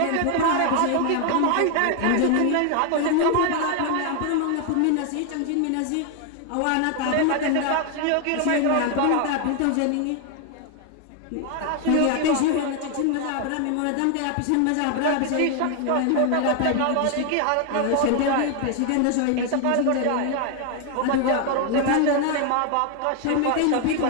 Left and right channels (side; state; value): both; different; correlation 0.00